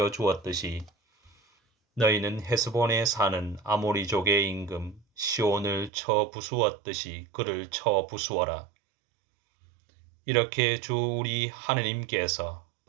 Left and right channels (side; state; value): left; drops out; at 5.9 s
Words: 너희는 헤스본에 사는 아모리족의 임금 시온을 쳐 부수었듯이 그를 쳐 부수어라. 이렇게 주 우리 하느님께서